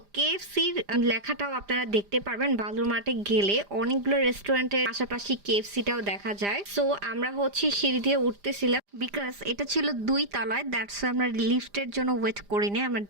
কেএফসির লেখাটাও আপনারা দেখতে পারবেন বালুর মাঠে গেলে। অনেকগুলো রেস্টুরেন্টের পাশাপাশি কেএফসিটাও দেখা যায়। সো আমরা হচ্ছে সিঁড়ি দিয়ে উঠতেছিলাম, বিকজ এটা ছিল 2 তলায়, দ্যাটস আমরা লিফটের জন্য ওয়েট করিনি, আমরা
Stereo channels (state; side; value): late; left; 5.0 ms